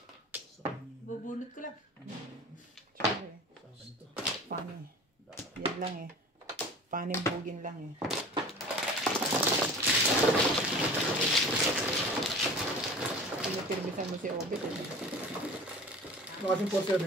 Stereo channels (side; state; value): both; normal; correlation 0.39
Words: Sa kanya. Bubunot ko lang. Sorry. Sa akin to. Funny. Yan lang eh. Funny bugin lang eh. Pinapirmisan mo si Obit eh. Nakasing